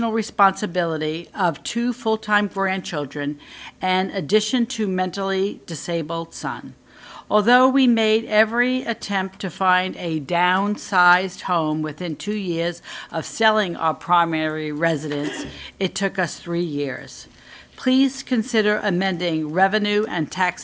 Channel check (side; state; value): both; identical; correlation 1.00